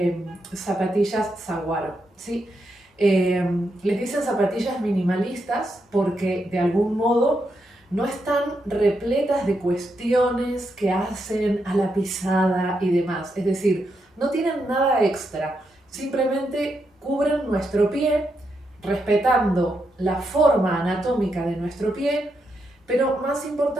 zapatillas Saguaro, ¿sí? Les dicen zapatillas minimalistas porque de algún modo no están repletas de cuestiones que hacen a la pisada y demás. Es decir, no tienen nada extra, simplemente cubren nuestro pie respetando la forma anatómica de nuestro pie, pero más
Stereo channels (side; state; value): both; normal; correlation 0.82